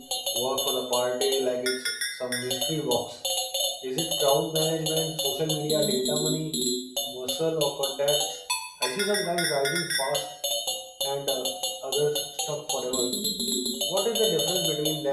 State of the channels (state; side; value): identical; both; correlation 1.00